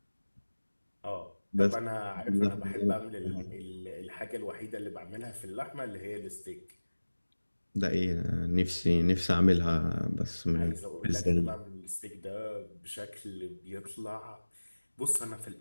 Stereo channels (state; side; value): inverted; both; correlation -1.00